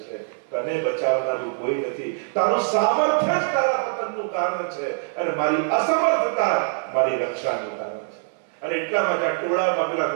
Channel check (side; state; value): left; silent; digital silence